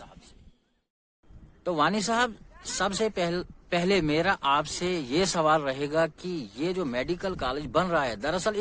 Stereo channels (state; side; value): identical; both; correlation 1.00